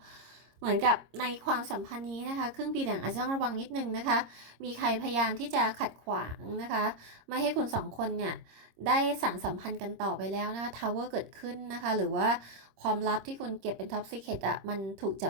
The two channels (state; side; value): late; left; 26 ms